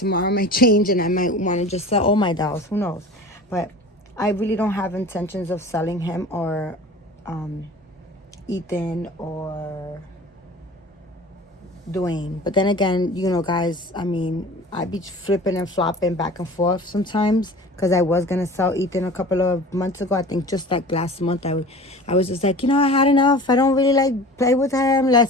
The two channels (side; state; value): both; normal; correlation 0.40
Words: might change and I might want to just sell all my dolls. Who knows? But I really don't have intentions of selling him or Ethan or Dwayne. But then again, you know, guys, I mean, I'd be flipping and flopping back and forth sometimes because I was going to sell Ethan a couple of months ago. I think just like last month, I was just like, I had enough. I don't really like play with him. Let